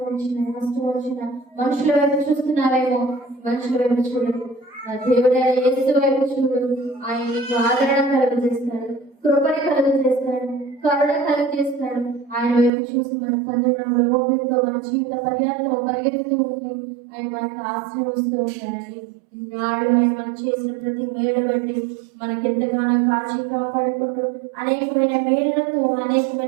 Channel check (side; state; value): left; drops out; at 12.7 s